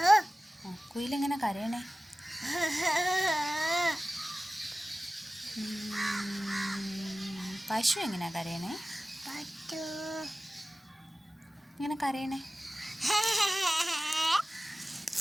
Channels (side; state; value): both; normal; correlation 0.96